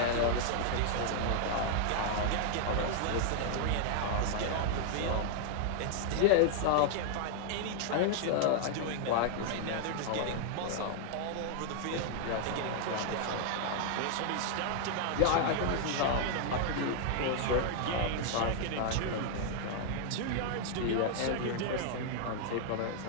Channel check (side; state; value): both; different; correlation 0.00